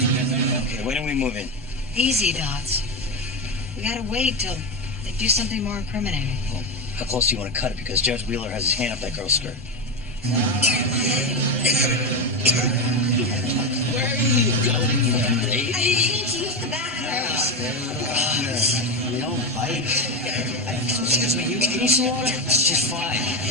Okay, when do we move in? Easy, Dots. We gotta wait till they do something more incriminating. Well, how close do you want to cut it? Because Judge Wheeler has his hand up that girl's skirt. Where are you going, lady? I need to use the bathroom. You don't bite. Excuse me, you need some water? She's fine.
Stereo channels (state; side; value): normal; both; correlation 0.14